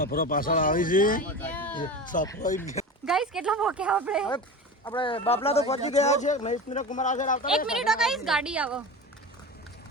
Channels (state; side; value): normal; both; correlation 0.29